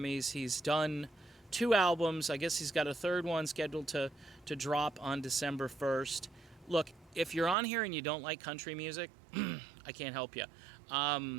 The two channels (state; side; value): drops out; left; at 7.6 s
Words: He's done 2 albums. I guess he's got a third one scheduled to drop on December 1st. Look, if you're on here and you don't like country music, I can't help you.